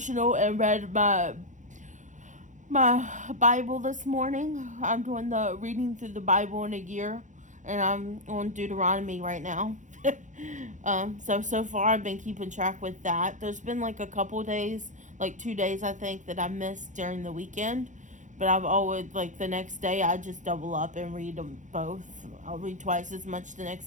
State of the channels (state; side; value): late; left; 0.36 ms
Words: and read my Bible this morning. I'm doing the reading through the Bible in a year, and I'm on Deuteronomy right now. So far I've been keeping track with that. There's been like a couple days, like 2 days I think, that I missed during the weekend, but I've always, like, the next day I just double up and read them both. I'll read twice as much the